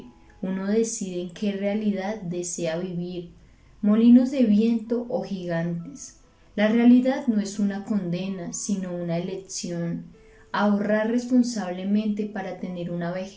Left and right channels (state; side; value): identical; both; correlation 1.00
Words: uno decide en qué realidad desea vivir, molinos de viento o gigantes. La realidad no es una condena, sino una elección. Ahorrar responsablemente para tener una